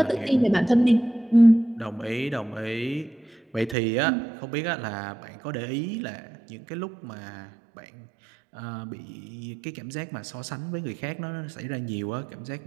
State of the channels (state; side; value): drops out; left; at 3.8 s